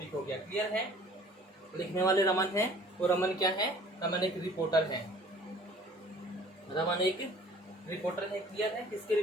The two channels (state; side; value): normal; both; correlation 0.51